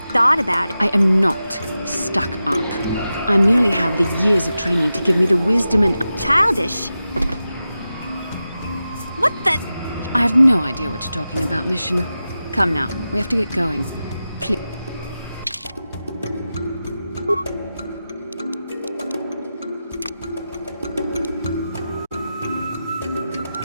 thought about it. I am not stuck up. I merely have the years of training to give me the wisdom and... Childish? What the... I have no idea what you're talking about, Mission. Come now, we have to get going. Please.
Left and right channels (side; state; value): both; inverted; correlation -0.92